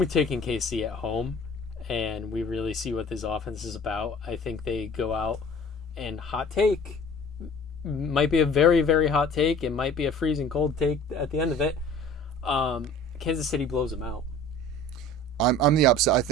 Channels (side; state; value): both; normal; correlation 0.46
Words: taking KC at home, and we really see what this offense is about. I think they go out and hot take. Might be a very, very hot take. It might be a freezing cold take at the end of it. Kansas City blows them out. I'm the upset. I